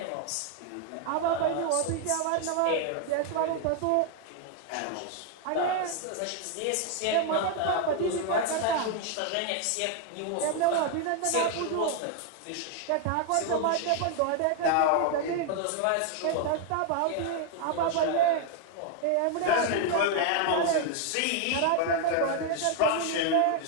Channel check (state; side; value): different; both; correlation 0.00